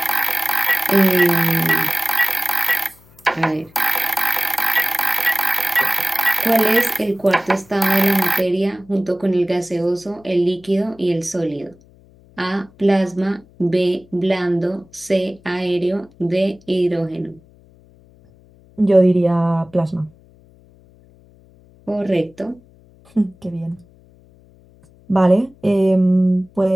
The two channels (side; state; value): left; noise; hum, 28 dB below the sound